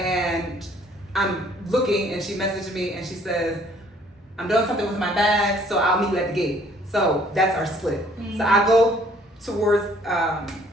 I'm looking, and she messaged me, and she says, I'm doing something with my bag, so I'll meet you at the gate. So that's our split. Mm-hmm. So I go towards,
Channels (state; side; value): normal; both; correlation 0.60